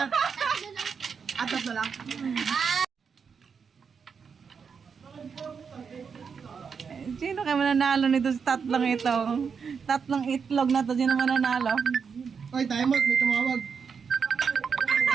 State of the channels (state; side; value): quieter; left; 6.1 dB